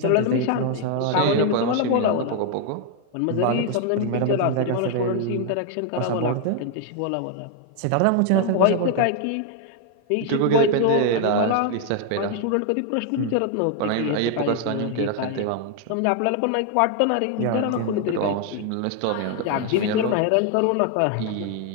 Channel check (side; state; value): both; different; correlation 0.00